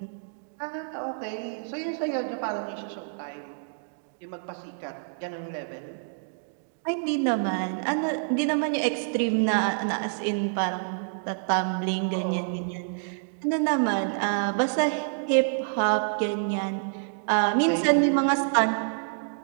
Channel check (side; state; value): left; silent; digital silence